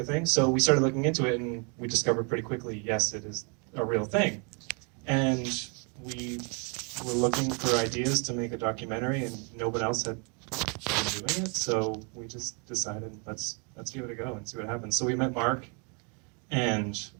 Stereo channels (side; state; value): left; quieter; 34.9 dB